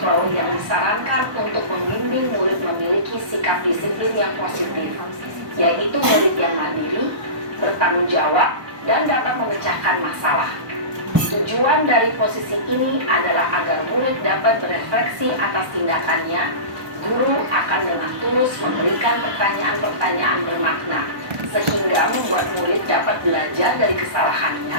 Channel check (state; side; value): late; left; 1.0 ms